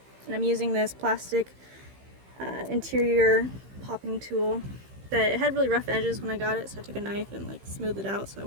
And I'm using this plastic interior popping tool that it had really rough edges when I got it, so I took a knife and like smoothed it out so I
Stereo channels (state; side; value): late; left; 15 ms